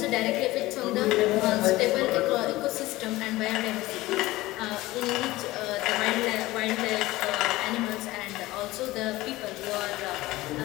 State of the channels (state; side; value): quieter; right; 18.4 dB